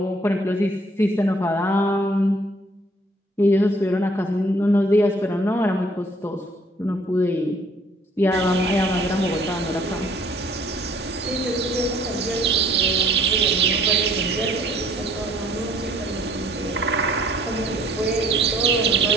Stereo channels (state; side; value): normal; both; correlation 0.59